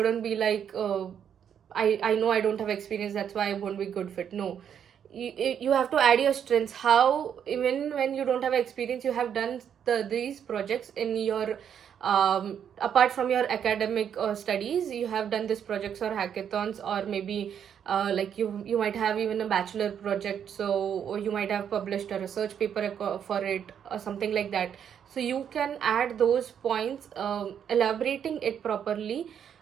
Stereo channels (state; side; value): quieter; left; 8.5 dB